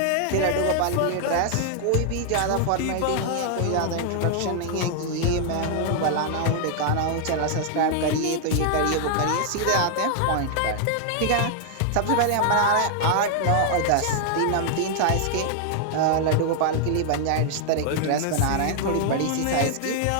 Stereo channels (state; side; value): different; both; correlation 0.00